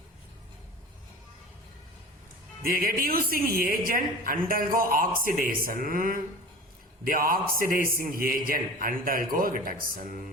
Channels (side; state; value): both; normal; correlation 0.36